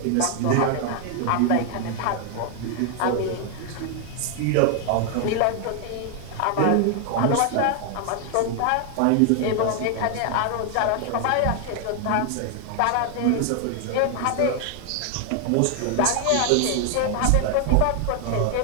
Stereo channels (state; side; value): different; both; correlation 0.00